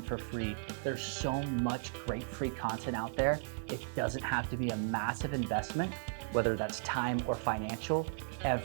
for free. There's so much great free content out there. It doesn't have to be a massive investment, whether that's time or financial,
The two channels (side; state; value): left; silent; digital silence